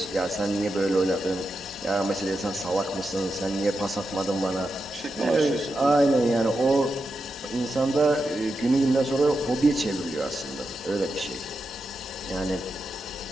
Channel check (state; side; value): normal; both; correlation 0.88